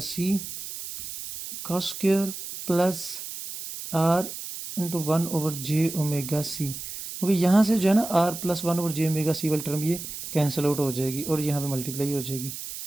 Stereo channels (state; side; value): noise; right; hiss, 9 dB below the sound